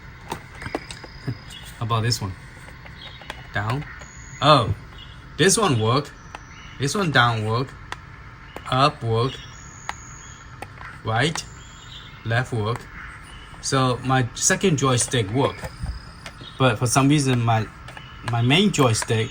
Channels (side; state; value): both; identical; correlation 1.00